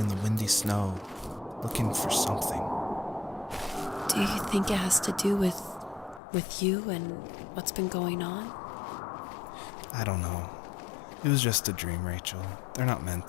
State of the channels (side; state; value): right; drops out; at 6.2 s